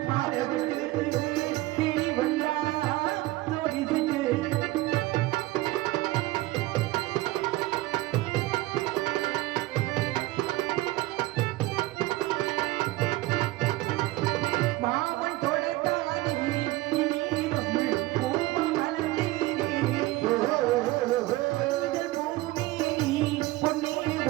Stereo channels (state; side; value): quieter; left; 18.4 dB